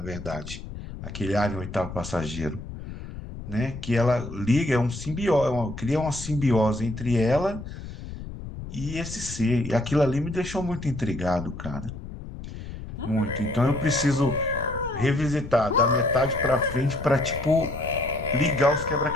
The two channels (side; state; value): left; noise; rumble, 11 dB below the sound